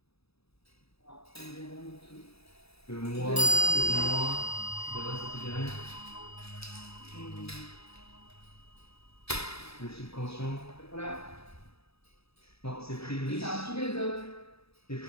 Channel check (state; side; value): late; right; 0.78 ms